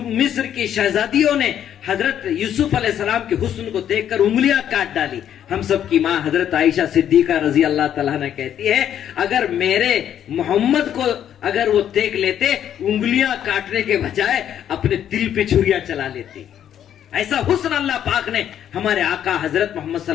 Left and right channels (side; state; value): right; quieter; 10.0 dB